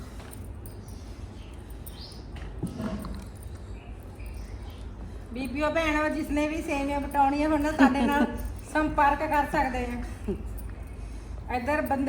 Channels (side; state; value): both; identical; correlation 1.00